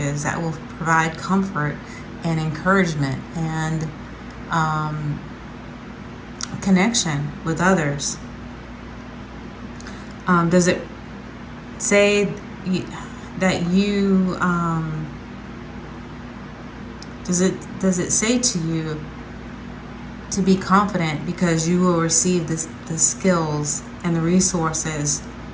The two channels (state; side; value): identical; both; correlation 1.00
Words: that will provide comfort and encouragement and connection with others? Does it say that you does it say to you to be confident because you will receive the skills and the resources